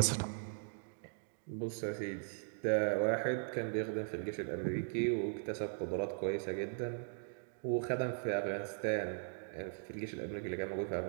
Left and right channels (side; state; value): left; silent; digital silence